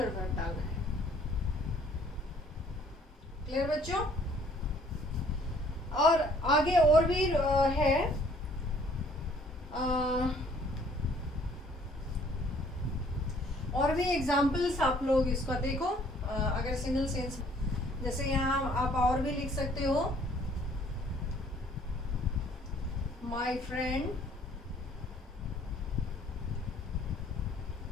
वर्ब डालना है। क्लियर बच्चों? और आगे और भी है, और भी एग्जाम्पल्स आप लोग इसका देखो। अगर सिंगल सेंस, जैसे यहाँ आप और भी लिख सकते हो, my friend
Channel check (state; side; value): normal; both; correlation 0.59